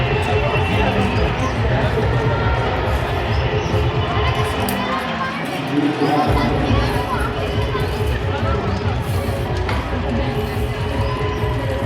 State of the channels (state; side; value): identical; both; correlation 1.00